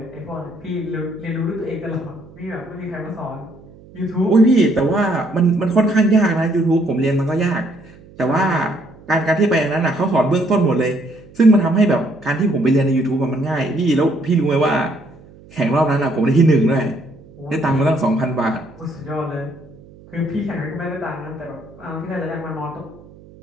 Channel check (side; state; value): right; noise; hum, 23 dB below the sound